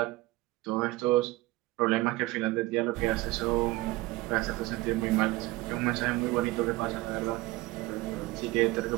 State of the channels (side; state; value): left; quieter; 19.7 dB